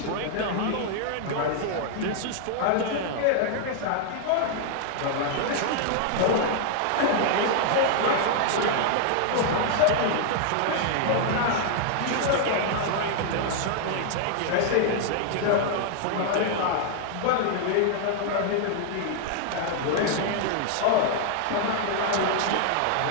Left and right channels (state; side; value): different; both; correlation 0.00